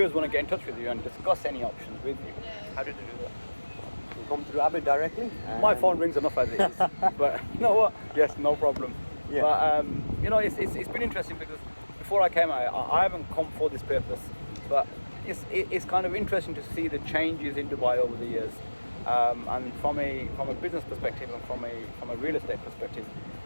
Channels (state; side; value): inverted; both; correlation -1.00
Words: want to get in touch with you and discuss any options with you, how do they do that? You come through Abid directly. My phone rings enough as it is, but you know what? Yes, no problem. Yeah. But you know, it's been interesting because before I came, I haven't come for this purpose, but it's kind of interesting to see the changes in Dubai over the years, and from a business perspective and from a real estate perspective,